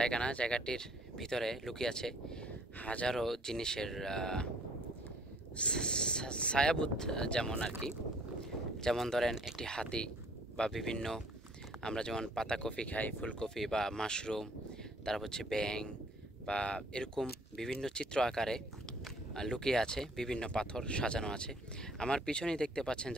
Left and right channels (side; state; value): both; normal; correlation 0.59